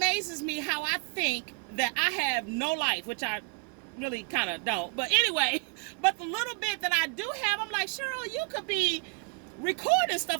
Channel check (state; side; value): quieter; left; 34.0 dB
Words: me how I think that I have no life, which I really kind of don't. But anyway, but the little bit that I do have, I'm like, Cheryl, you could be recording